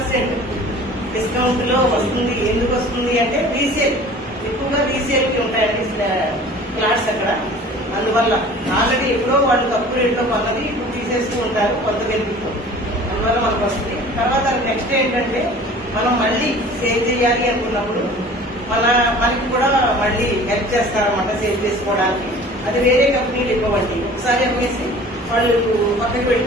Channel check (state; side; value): normal; both; correlation 0.45